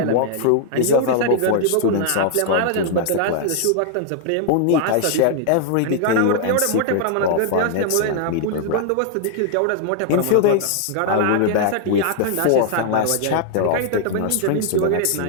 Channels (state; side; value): different; both; correlation 0.00